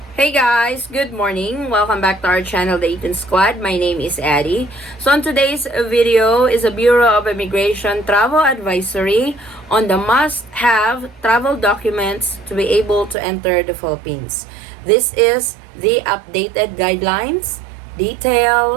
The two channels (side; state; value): left; drops out; at 13.2 s